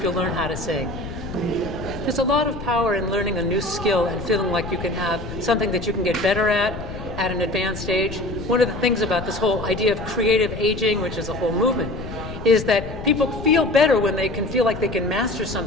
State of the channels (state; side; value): noise; left; rumble, 9 dB below the sound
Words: you'll learn how to sing. There's a lot of power in learning a new skill and feeling like you can have something that you can get better at an advanced age. One of the things about this whole idea of creative aging, which is a whole movement, is that people feel better when they can feel like they can master